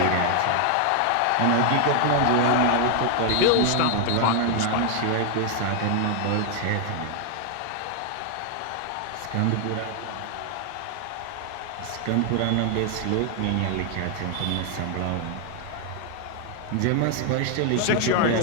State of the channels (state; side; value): different; both; correlation 0.00